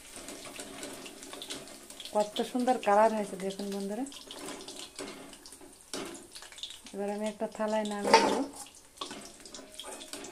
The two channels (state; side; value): identical; both; correlation 1.00